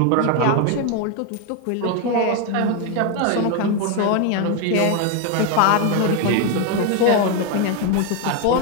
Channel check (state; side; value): different; both; correlation 0.01